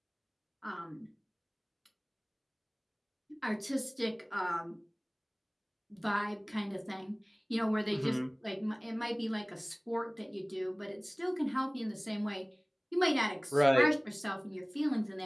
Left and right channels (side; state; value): both; identical; correlation 1.00